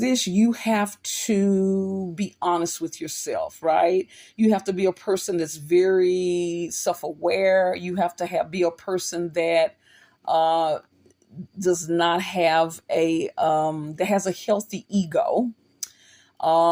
you have to be honest with yourself, right? You have to be a person that's very self-aware. You have to be a person that uh, does not have that has a healthy ego,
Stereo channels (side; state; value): both; identical; correlation 1.00